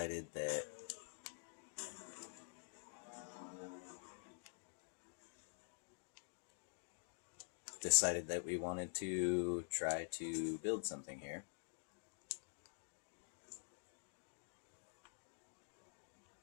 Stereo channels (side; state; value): right; silent; digital silence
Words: that we wanted to try to build something here.